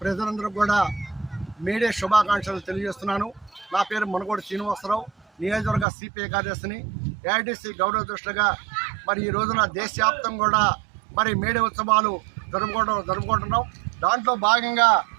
ప్రజలందరూ కూడా మేడే శుభాకాంక్షలు తెలియజేస్తున్నాను. నా పేరు మునుగోడి శ్రీనివాసరావు, నియోజకవర్గ సిపిఐ కార్యదర్శిని. ఏఐటిసి గౌరవ దృష్టిగా మరి ఈ రోజున దేశవ్యాప్తంగా కూడా మరి మేడే ఉత్సవాలు జరుపుకుంటున్నాం. దాంట్లో భాగంగా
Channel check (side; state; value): left; drops out; at 5.9 s